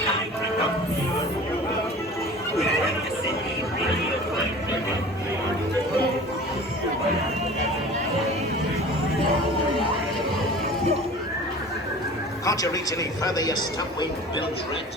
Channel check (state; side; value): normal; both; correlation 0.41